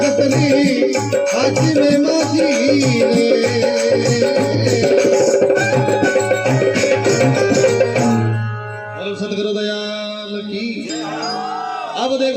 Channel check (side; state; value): both; identical; correlation 1.00